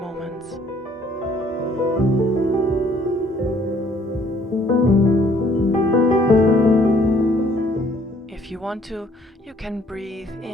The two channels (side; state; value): both; normal; correlation 0.61